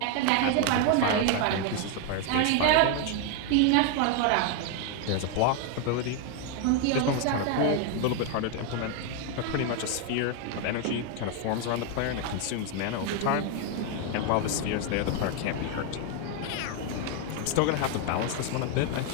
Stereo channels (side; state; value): both; different; correlation 0.01